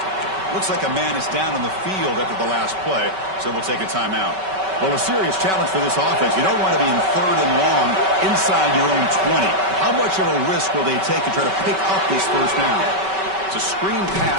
Looks like a man is down on the field after the last play, so we'll take a timeout. Well, a serious challenge for this offense. You don't want to be in third and long inside your own 20. How much of a risk will they take to try to pick up this first down? It's a screen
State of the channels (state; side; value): late; left; 5.2 ms